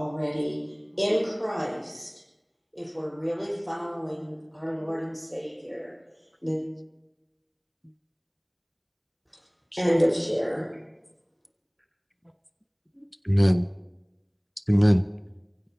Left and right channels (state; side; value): identical; both; correlation 1.00